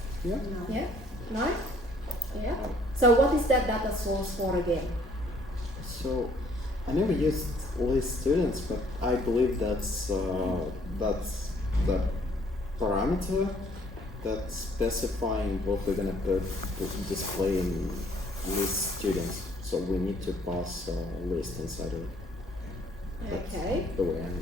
Yeah. Yeah? No? Yeah? So what is that data source for again? So I never used list students, but I believe that's the parameter that's specifying what we're gonna put display in list students. So we need to pass a list inside of it. That's Okay. the way I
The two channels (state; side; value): normal; both; correlation 0.62